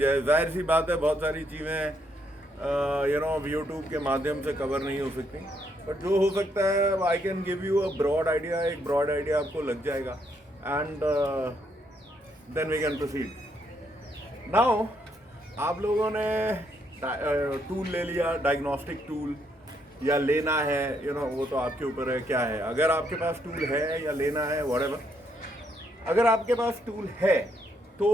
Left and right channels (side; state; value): both; normal; correlation 0.74